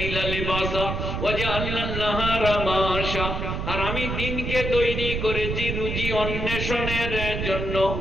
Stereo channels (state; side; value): noise; right; rumble, 3 dB below the sound